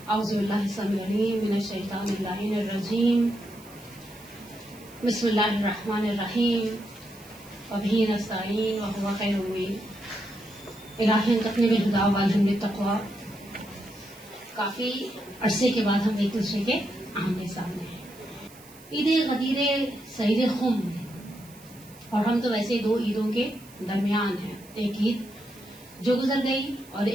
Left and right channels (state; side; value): noise; right; hiss, 22 dB below the sound